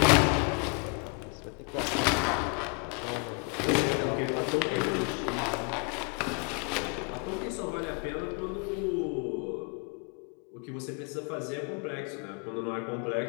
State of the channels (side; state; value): right; quieter; 34.1 dB